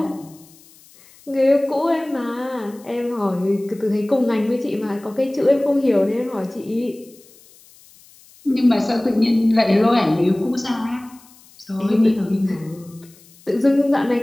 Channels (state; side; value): noise; left; hiss, 26 dB below the sound